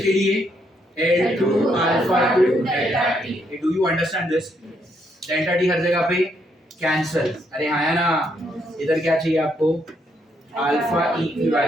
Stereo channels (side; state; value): both; normal; correlation 0.75